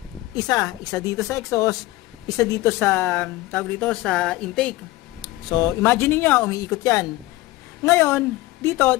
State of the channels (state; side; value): quieter; right; 18.4 dB